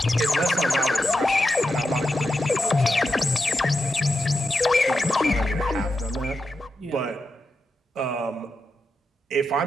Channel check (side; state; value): both; normal; correlation 0.88